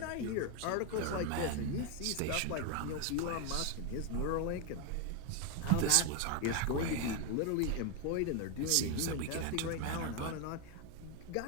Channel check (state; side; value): different; both; correlation 0.01